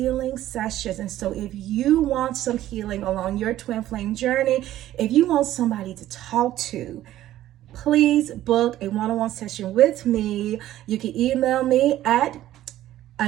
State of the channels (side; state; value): left; quieter; 13.7 dB